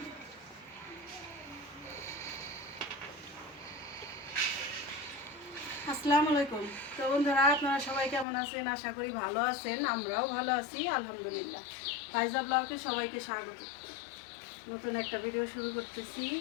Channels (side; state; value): right; drops out; at 8.2 s